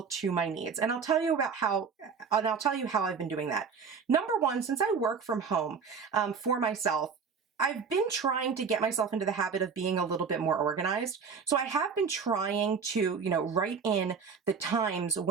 to my needs. And I'll tell you how I've been doing that. Number one, since I work from home for myself, I've been trying to get myself into the habit of being a little bit more organized. So I have been trying to, write in the times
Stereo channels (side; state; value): left; quieter; 5.9 dB